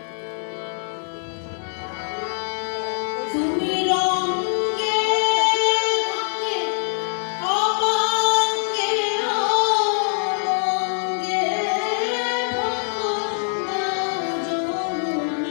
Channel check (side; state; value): right; silent; digital silence